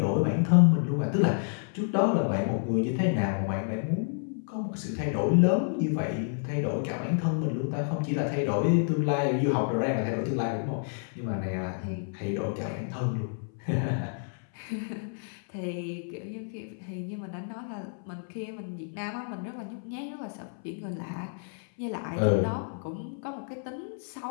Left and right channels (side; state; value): right; silent; 58 dB below the other